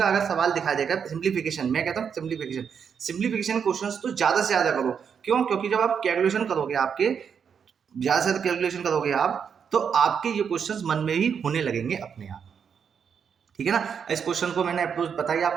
अगर सवाल दिखा देगा, सिंप्लीफिकेशन, मैं कहता हूँ सिंप्लीफिकेशन क्वेश्चंस तो ज़्यादा से ज़्यादा करो, क्यों, क्योंकि जब आप कैलकुलेशन करोगे, आपके ज़्यादा से ज़्यादा कैलकुलेशन करोगे आप, तो आपके ये क्वेश्चंस मन में ही होने लगेंगे अपने आप, ठीक है ना। इस क्वेश्चन को मैंने अप्रोच बताई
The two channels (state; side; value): quieter; left; 7.1 dB